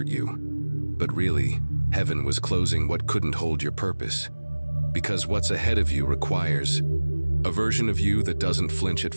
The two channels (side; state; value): both; inverted; correlation -1.00